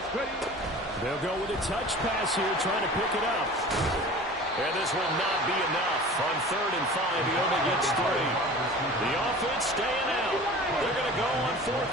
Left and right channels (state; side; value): normal; both; correlation 0.40